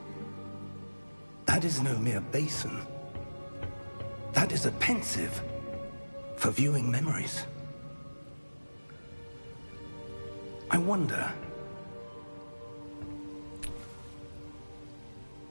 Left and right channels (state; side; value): inverted; both; correlation -1.00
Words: That is no mere basin. That is a pensive for viewing memories. I wonder...